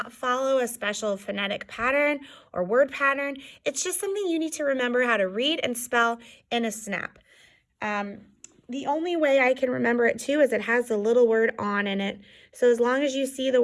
follow a special phonetic pattern or word pattern. It's just something you need to remember how to read and spell in a snap. The only way I can remember it too is it has the little word on in it. So as long as you see the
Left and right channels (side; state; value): both; identical; correlation 1.00